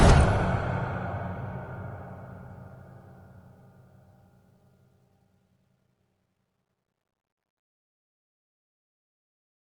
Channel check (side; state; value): both; identical; correlation 1.00